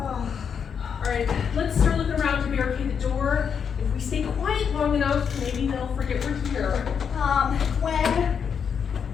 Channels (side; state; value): right; quieter; 7.0 dB